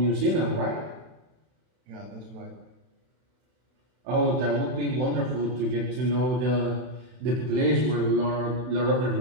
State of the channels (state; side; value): late; left; 31 ms